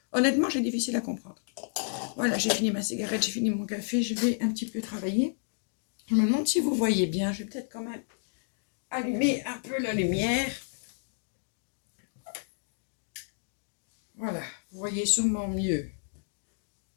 Honnêtement, c'est difficile à comprendre. Voilà, j'ai fini ma cigarette, j'ai fini mon café, je vais un petit peu travailler. Je me demande si vous voyez bien, je vais peut-être quand même allumer un peu la lumière. Voilà, vous voyez sûrement mieux.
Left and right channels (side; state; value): right; silent; digital silence